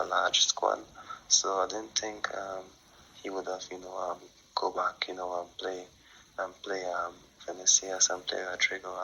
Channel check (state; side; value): identical; both; correlation 1.00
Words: large squad. So I didn't think he would have, go back, and play Vinicius and play Rodrigo